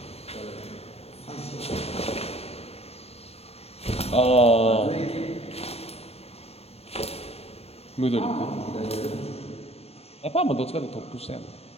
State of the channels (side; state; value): right; late; 0.29 ms